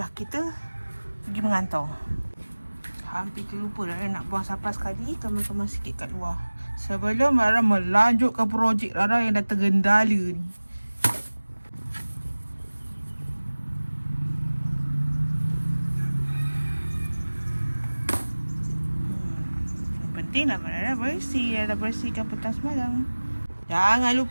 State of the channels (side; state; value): both; inverted; correlation -1.00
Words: kita pergi mengantar. Hampir terlupa Rara nak buang sampah sekali, kemas-kemas sikit kat luar. Sebelum Rara melanjutkan projek Rara yang dah tergendala ni. Yang penting nak Rara bersih. Rara bersihkan petang semalam. Jangan